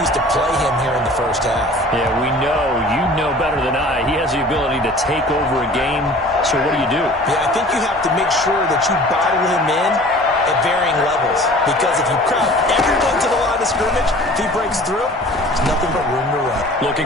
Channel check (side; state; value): both; normal; correlation 0.46